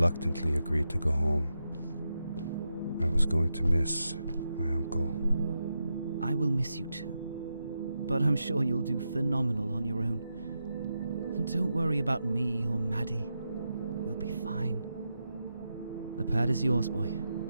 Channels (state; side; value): inverted; both; correlation -0.87